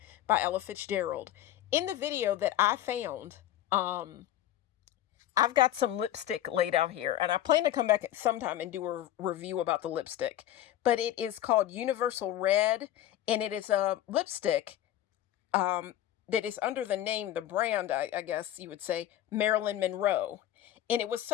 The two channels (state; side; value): quieter; right; 12.6 dB